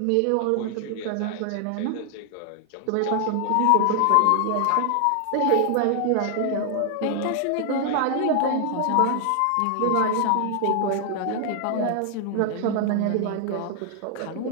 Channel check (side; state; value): both; different; correlation 0.00